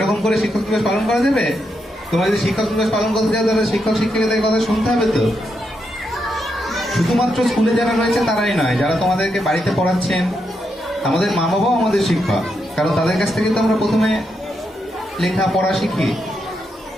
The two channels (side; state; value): both; normal; correlation 0.82